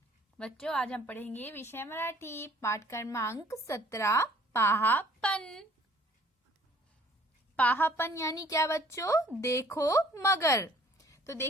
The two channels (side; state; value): both; normal; correlation 0.57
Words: बच्चों, आज हम पढ़ेंगे विषय मराठी पाठ क्रमांक 17 पाहापन। पाहापन यानी क्या बच्चों? देखो मगर। तो